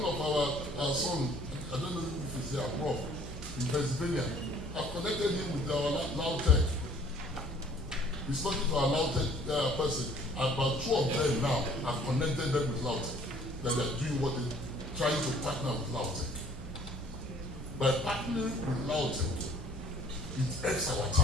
of our sons, I don't know if he's here, Prof, in Pennsylvania. I've connected him with our Lautech. He's talking to our Lautech person. About 2 of them now have connected them with Lautech. That they're doing what they're trying to partner with Lautech. By partnering with Lautech, it helps our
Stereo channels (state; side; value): normal; both; correlation 0.56